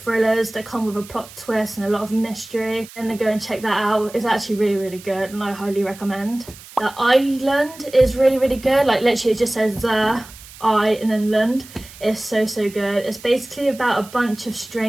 that come with a plot twist and a lot of mystery, then go and check that out. It's actually really good, and I highly recommend. The island is really, really good. Like literally it just says the I and then land. It's so good. It's basically about a bunch of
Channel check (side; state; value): right; noise; hiss, 19 dB below the sound